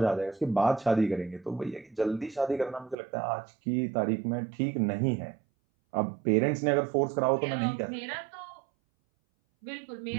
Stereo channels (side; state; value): left; drops out; at 3.0 s